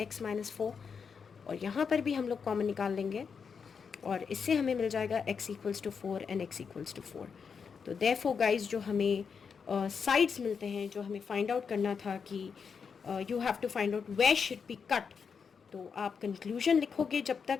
x माइनस 4, और यहाँ पर भी हम लोग कॉमन निकाल लेंगे, और इससे हमें मिल जाएगा x equals to 4 and x equals to 4। तो देयरफॉर गाइज जो हमें साइड्स मिलते हैं, जो हमें फाइंड आउट करना था कि you have to find out where should be cut, तो आप कंक्लूजन लिखोगे, जब तक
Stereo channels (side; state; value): right; quieter; 6.1 dB